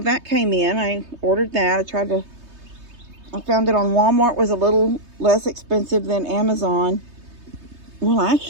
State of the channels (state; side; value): late; left; 3.2 ms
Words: that came in. I ordered that. I found it on Walmart. Was a little less expensive than Amazon. Well,